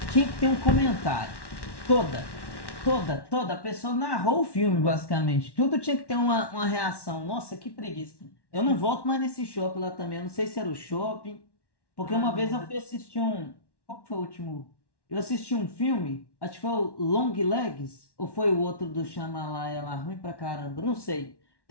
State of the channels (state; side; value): late; right; 1.1 ms